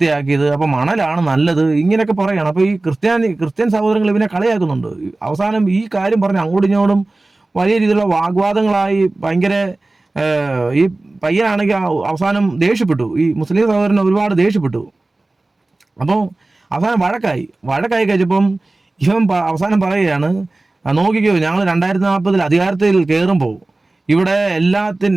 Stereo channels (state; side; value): quieter; left; 3.0 dB